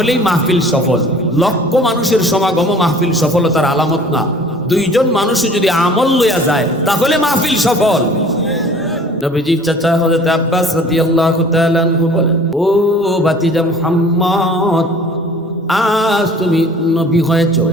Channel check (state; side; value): normal; both; correlation 0.49